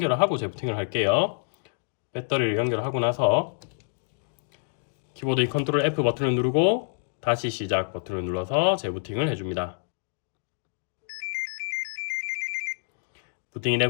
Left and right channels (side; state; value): right; silent; digital silence